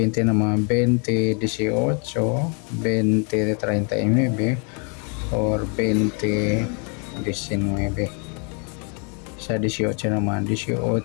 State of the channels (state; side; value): quieter; right; 37.3 dB